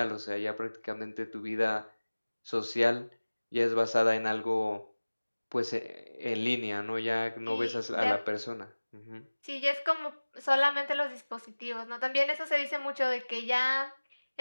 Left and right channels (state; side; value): inverted; both; correlation -1.00